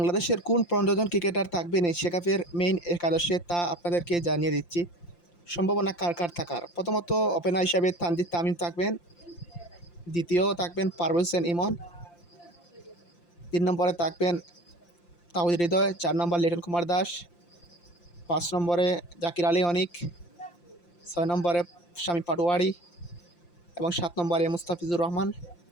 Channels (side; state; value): right; late; 5.8 ms